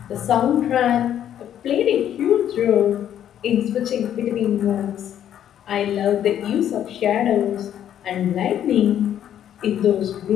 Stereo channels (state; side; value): quieter; right; 10.4 dB